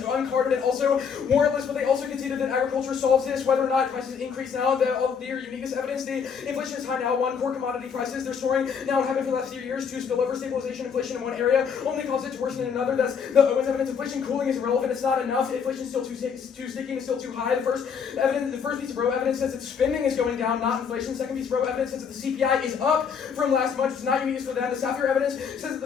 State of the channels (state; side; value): quieter; right; 6.6 dB